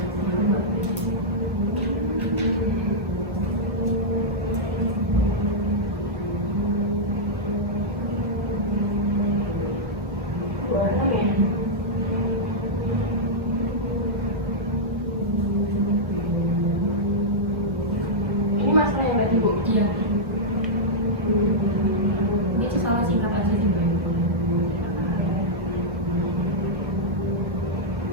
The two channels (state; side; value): normal; both; correlation -0.08